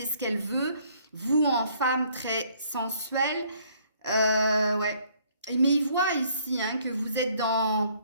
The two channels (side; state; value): both; inverted; correlation -0.63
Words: ce qu'elle veut, vous en femme très sensuelle. Ouais. Mais il voit ici hein, que vous êtes